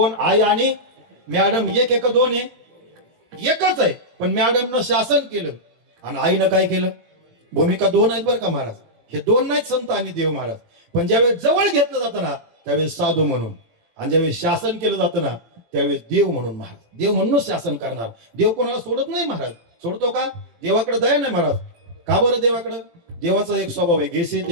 आई आणि मॅडम एक का 2 आहे एकच आहे. पण मॅडमनं शासन केलं आणि आईनं काय केलं भूमिका 2 आहेत बरं का महाराज. हे 2 नाहीत संत आणि देव महाराज. पण ज्यावेळेस जवळ घेतलं जातं ना त्यावेळेस साधू म्हणून आणि ज्यावेळेस शासन केलं जातं ना त्यावेळेस देव म्हणून महाराज. देव म्हणूनच शासन करणार. देव कोणाला सोडत नाही महाराज. सोडतो का देवाकडे दया नाही महाराज. का बरं देवाकडं देवाचा एक स्वभाव आहे घेसे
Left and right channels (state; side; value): late; left; 17 ms